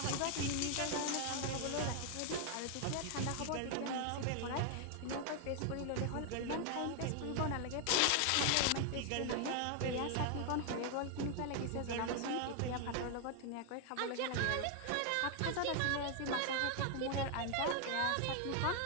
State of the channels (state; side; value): different; both; correlation 0.00